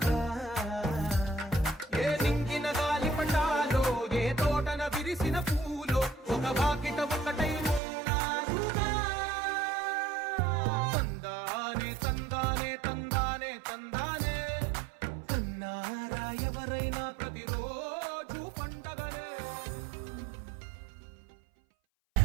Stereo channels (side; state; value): left; drops out; at 7.8 s